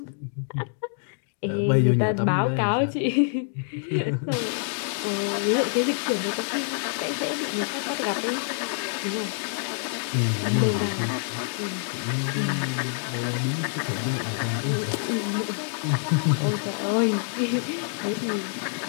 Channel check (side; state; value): right; silent; 61 dB below the other